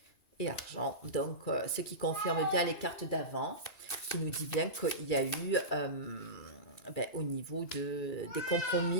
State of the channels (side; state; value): right; late; 1.9 ms